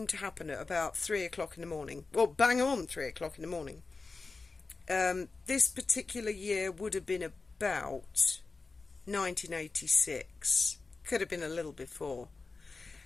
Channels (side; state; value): right; quieter; 4.0 dB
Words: to happen at about 3 o'clock in the morning. Well, bang on 3 o'clock in the morning. This particular year would have been about 1986. Could have been a little before.